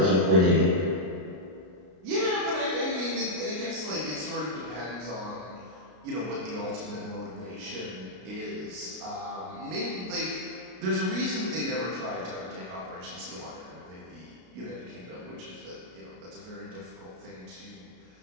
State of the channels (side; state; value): left; late; 33 ms